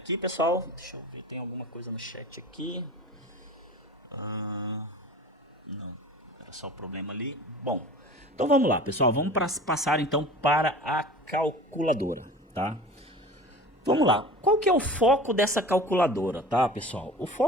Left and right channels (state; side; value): normal; both; correlation 0.39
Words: pessoal? Deixa eu ver, tem alguma coisa no chat aqui. Não, era só o problema ali. Bom, então vamos lá, pessoal. Vamos passar então para a calculadora, tá? Vamos lá. Qual que é o foco dessa calculadora, tá, pessoal? O